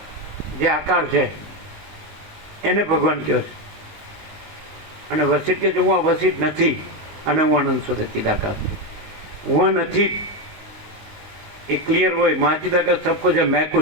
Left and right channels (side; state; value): left; late; 19 ms